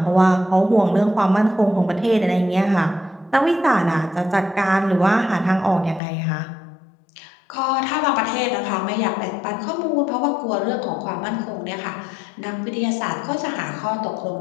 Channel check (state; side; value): drops out; right; at 6.0 s